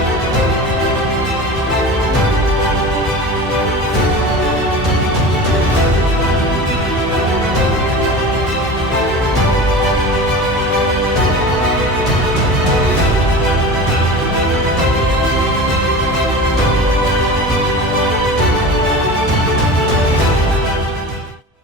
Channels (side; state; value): both; normal; correlation 0.33